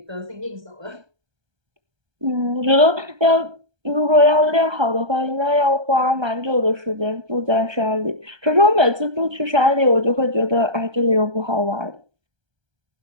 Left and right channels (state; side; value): late; left; 1.3 ms